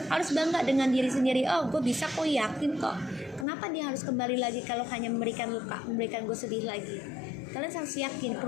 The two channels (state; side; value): drops out; right; at 3.5 s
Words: Harus bangga dengan diri sendiri. Oh, gue bisa kok, yakin kok. Kenapa dia harus kembali lagi kalau hanya memberikan luka, memberikan gue sedih lagi? Kalian harus yakin